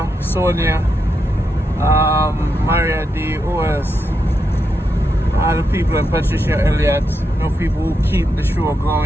Sonia, Maria D, who else? All the people, and Patricia Elliott, no people who keep the show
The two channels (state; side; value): normal; both; correlation 0.84